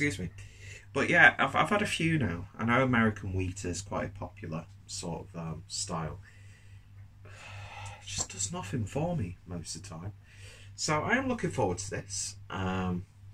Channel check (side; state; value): both; identical; correlation 1.00